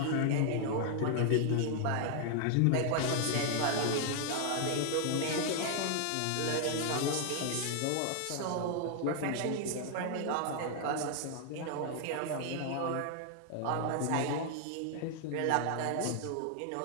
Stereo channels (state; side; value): different; both; correlation 0.00